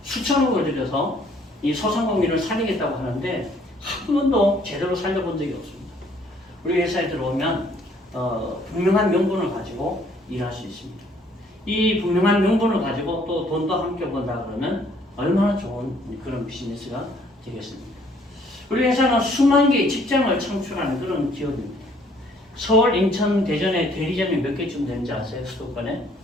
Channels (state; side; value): normal; both; correlation 0.62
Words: 수천억을 들여서 이 소상공인을 살리겠다고 하는데 한 번도 제대로 살려본 적이 없습니다. 우리 회사에 들어오면 분명한 명분을 가지고 일할 수 있습니다. 이 분명한 명분을 가지고 또 돈도 함께 번다 그러면 얼마나 좋은 그런 비즈니스가 되겠습니까? 우리 회사는 수만 개의 직장을 창출하는 그런 기업입니다. 서울, 인천, 대전에 대리점이 몇 개쯤 되는지 아세요? 수도권에?